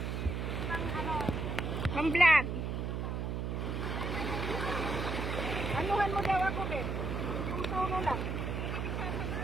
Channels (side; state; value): right; noise; hum, 2 dB below the sound